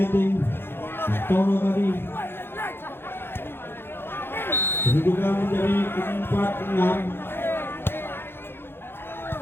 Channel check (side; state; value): right; late; 0.11 ms